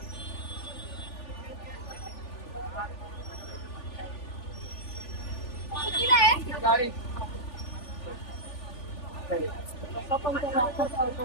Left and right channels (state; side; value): late; right; 3.4 ms